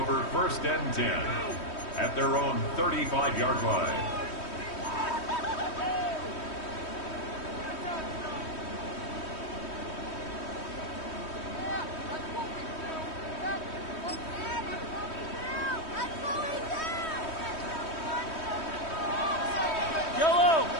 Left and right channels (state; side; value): late; right; 3.1 ms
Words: first and 10 at their own 35-yard line. Yellow.